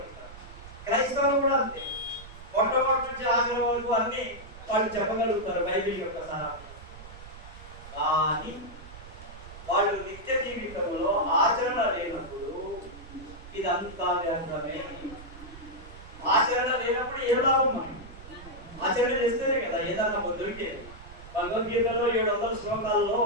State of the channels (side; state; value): right; noise; rumble, 16 dB below the sound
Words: క్రైస్తవులు కూడా అంతే, మొట్టమొదటి నుంచి ఆఖరి వరకు అన్ని వాళ్ళు చెప్పగలుగుతారు బైబిల్ యొక్క సారాంశం. కానీ వాళ్ళు నిత్య జీవితంలో ఆచరణ లేనప్పుడు ఇదంతా వ్యర్థమే. ఆచరణ లేనప్పుడు ఏ లాభం? మనం ఆచరణ చేస్తేనే కదా ఏదన్నా దొరికేది. భగవద్గీతలో 700 శ్లోకాల్లో